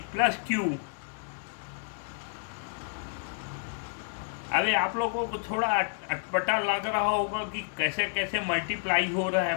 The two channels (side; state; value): right; silent; digital silence